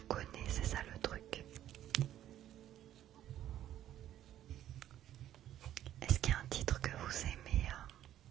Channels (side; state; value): left; quieter; 12.0 dB